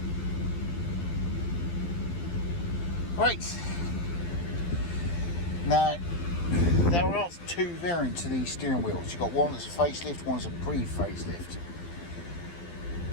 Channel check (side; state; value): right; late; 12 ms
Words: Right. Now, there are two variants of these steering wheels. You've got one that's a facelift, one's a pre-facelift.